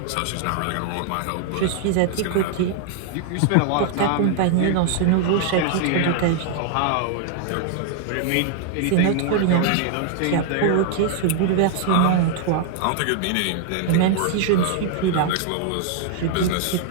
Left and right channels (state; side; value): different; both; correlation 0.00